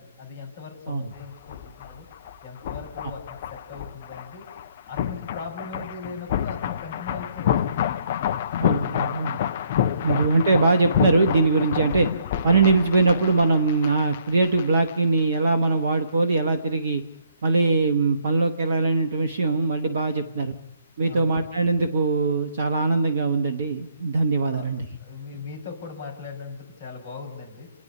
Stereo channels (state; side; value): inverted; both; correlation -0.67